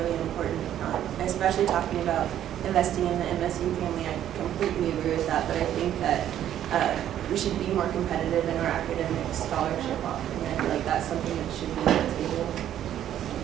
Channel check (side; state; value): left; quieter; 11.1 dB